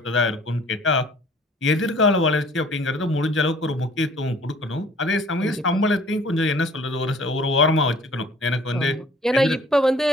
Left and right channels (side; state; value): both; normal; correlation 0.53